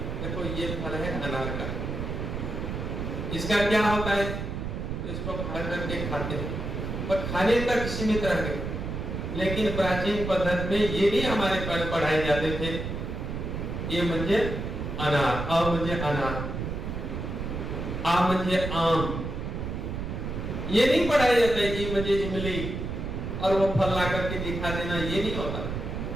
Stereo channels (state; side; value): noise; right; rumble, 4 dB below the sound